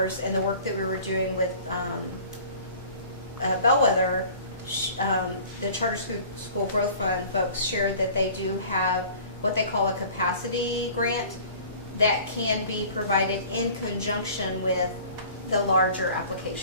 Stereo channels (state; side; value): inverted; both; correlation -0.46